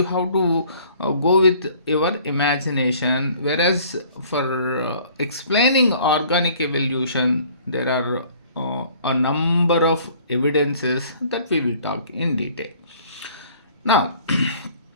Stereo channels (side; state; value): both; inverted; correlation -0.54